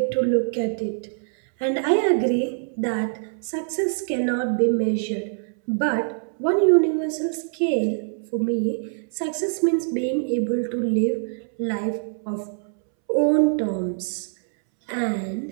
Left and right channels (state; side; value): silent; left; 63 dB below the other